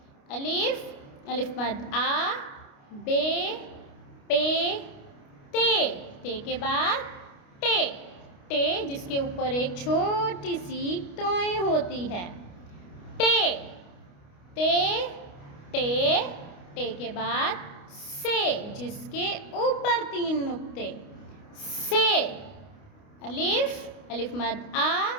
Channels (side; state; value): right; late; 29 ms